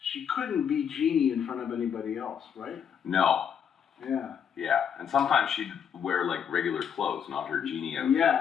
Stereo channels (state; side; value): quieter; right; 7.9 dB